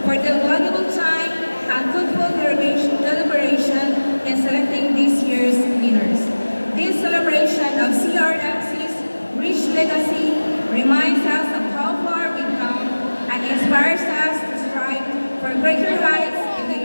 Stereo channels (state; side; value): inverted; both; correlation -1.00